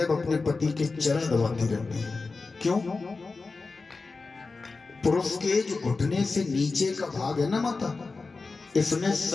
अपने पति के चरण दबाती रहती है। क्यों? पुरुष के जो घुटने से नीचे का भाग है ना माता, इसमें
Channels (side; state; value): right; quieter; 4.0 dB